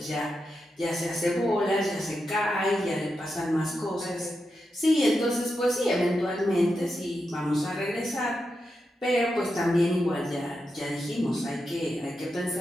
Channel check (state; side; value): normal; both; correlation 0.87